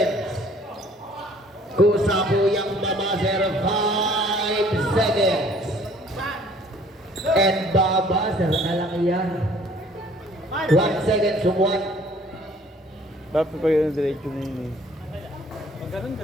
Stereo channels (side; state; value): both; normal; correlation 0.56